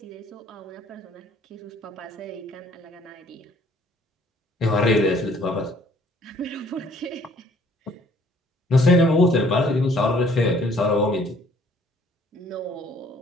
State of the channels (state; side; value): normal; both; correlation 0.59